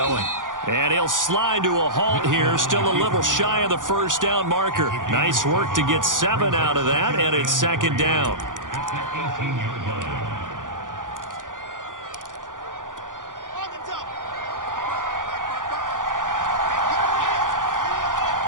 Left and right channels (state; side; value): late; left; 0.88 ms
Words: And he'll slide to a halt here, still a little shy of the first down marker. Nice work to get 7 out of that, and it's 2nd down.